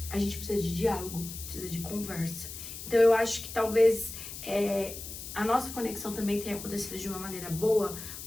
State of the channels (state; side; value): noise; left; hiss, 10 dB below the sound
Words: a gente precisa de diálogo, precisa de conversa. Então, eu acho que talvez a nossa conexão também tenha acontecido de uma maneira boa,